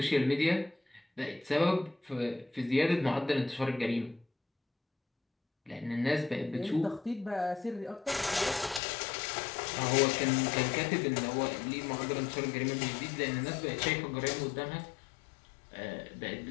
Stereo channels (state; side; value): drops out; right; at 8.8 s